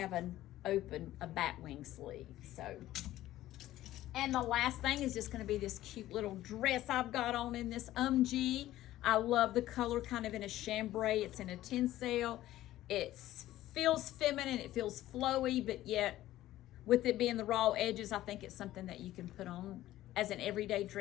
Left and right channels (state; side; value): quieter; right; 14.7 dB